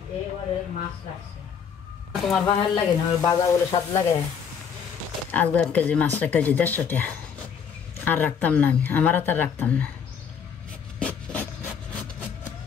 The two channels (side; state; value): right; quieter; 7.0 dB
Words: তোমার বাহার লাগে না বাজা বলে স্বাদ লাগে আজকে 1 কেজি মাছ 1 কেজি 150 টাকা আর রাখতাম না আমি আমার আর রাখতাম না